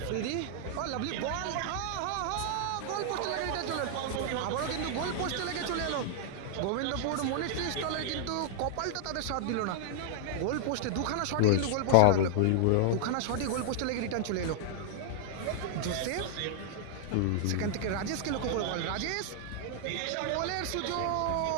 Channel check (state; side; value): different; both; correlation -0.01